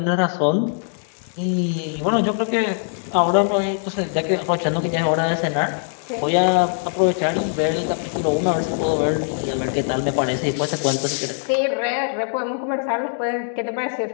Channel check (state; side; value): silent; right; digital silence